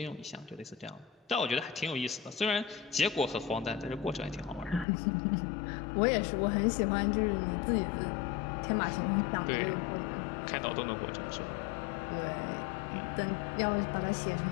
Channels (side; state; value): right; drops out; at 4.9 s